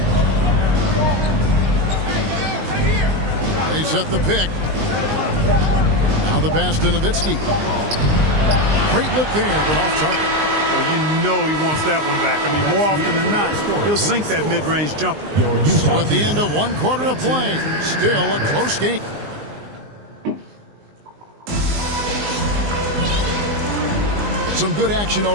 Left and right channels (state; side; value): late; left; 19 ms